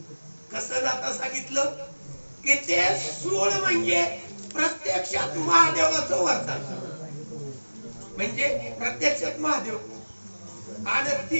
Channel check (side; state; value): both; inverted; correlation -1.00